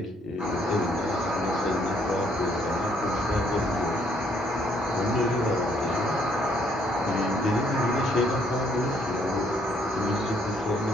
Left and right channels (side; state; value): both; normal; correlation 0.67